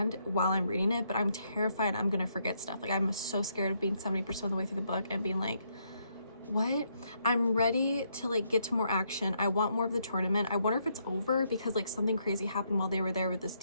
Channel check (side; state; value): both; inverted; correlation -0.75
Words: while I'm reading it, but I'm terrified I'm gonna forget stuff. Like, I'm so scared of being 70% of the way through the book and being like, what? I'm ready to like get to more action. I want more of the tournament. I wonder if it's over, because like something crazy happened while they were there, with this